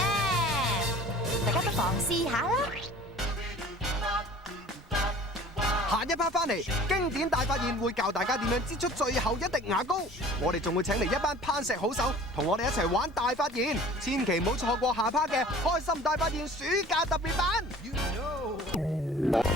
大家不妨試下啦！下一 part 翻嚟，經典大發現會教大家點樣擠出最後一滴牙膏。我哋仲會請嚟一班攀石好手，同我哋一齊玩大發現，千祈唔好錯過下 part 嘅開心大發現暑假特別版。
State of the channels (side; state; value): both; normal; correlation 0.46